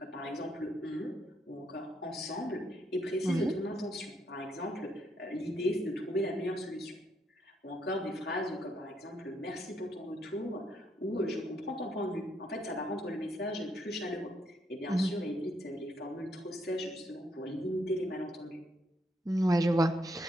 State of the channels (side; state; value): both; normal; correlation 0.75